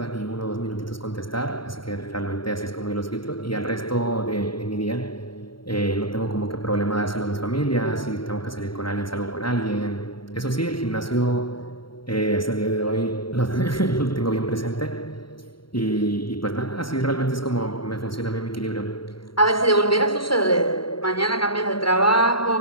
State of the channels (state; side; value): late; right; 0.73 ms